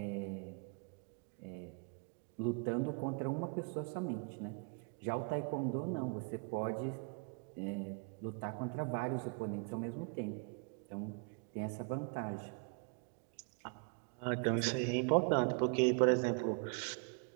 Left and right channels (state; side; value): quieter; left; 35.9 dB